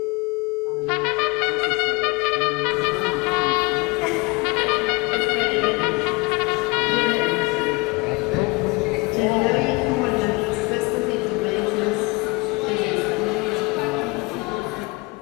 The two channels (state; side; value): quieter; right; 25.4 dB